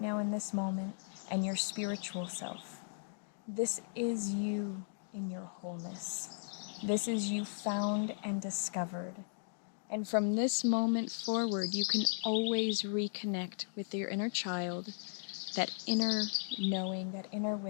in this moment, and your spiritual self. This is you in your wholeness. This is you found and discovered. And from this moment forward, you can always reconnect with your inner child, that inner knowing, that inner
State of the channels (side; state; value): right; silent; digital silence